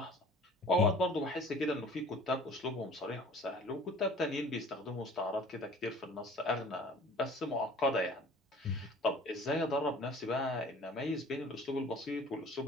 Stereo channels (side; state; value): both; normal; correlation 0.48